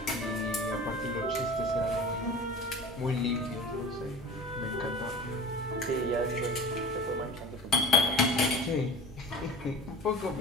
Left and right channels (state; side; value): normal; both; correlation 0.37